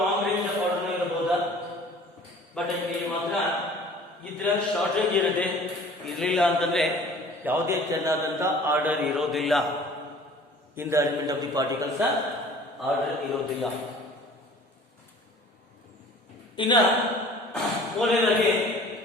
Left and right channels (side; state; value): both; normal; correlation 0.48